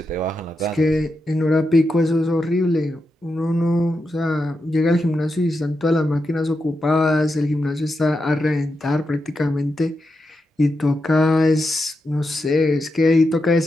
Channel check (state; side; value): normal; both; correlation 0.87